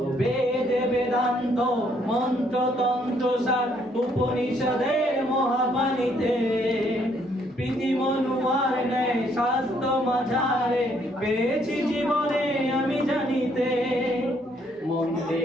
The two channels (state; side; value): normal; both; correlation 0.68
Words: বেদে বেদান্ত মন্ত্রতন্ত্র সার উপনিষদের মহাবাণীতে প্রীতি মনুয়ার নেয় স্বাস্থ্য মাঝারে পেয়েছি জীবনে আমি জানিতে।